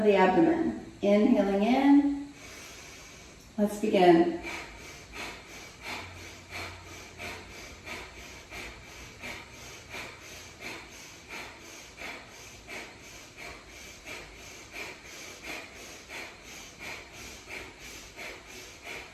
the abdomen. Inhaling in. Let's begin.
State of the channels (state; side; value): identical; both; correlation 1.00